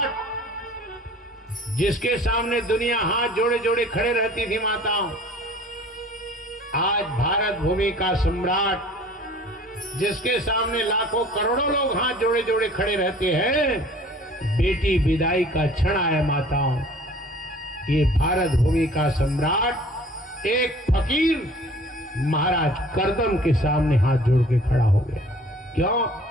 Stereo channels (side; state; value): both; normal; correlation 0.49